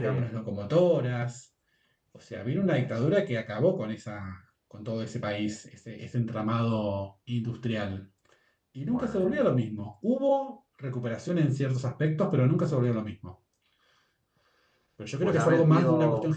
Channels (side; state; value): both; identical; correlation 1.00